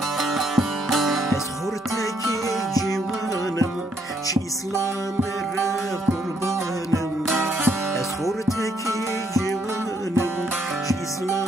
أسخورتك جوانم شي إسلام قربانم أسخورتك جوانم شي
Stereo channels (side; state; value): both; normal; correlation 0.72